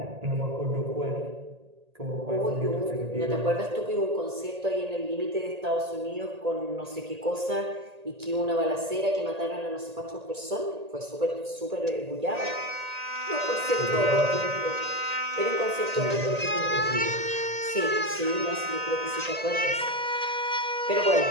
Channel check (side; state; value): left; late; 1.8 ms